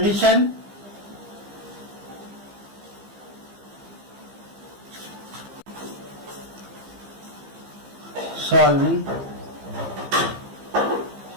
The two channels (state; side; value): late; left; 15 ms